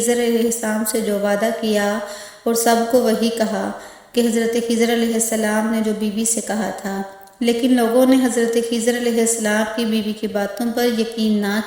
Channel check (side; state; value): both; identical; correlation 1.00